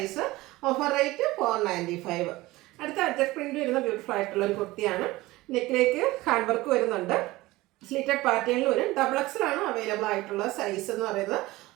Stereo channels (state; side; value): quieter; left; 19.3 dB